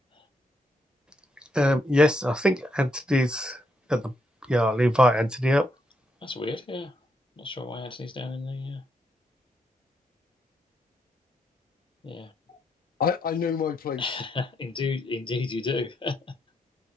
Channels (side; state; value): both; normal; correlation 0.78